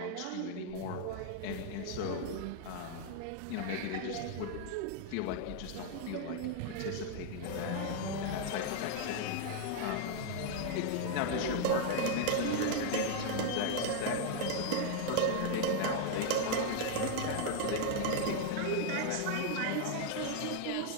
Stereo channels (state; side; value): different; both; correlation 0.00